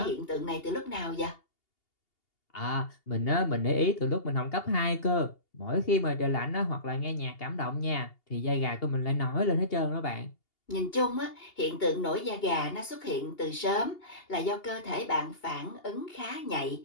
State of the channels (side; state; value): right; late; 2.8 ms